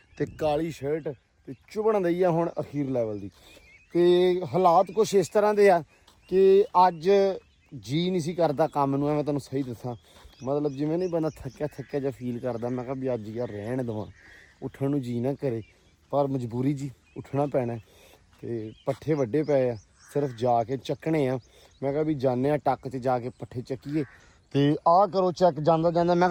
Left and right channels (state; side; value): identical; both; correlation 1.00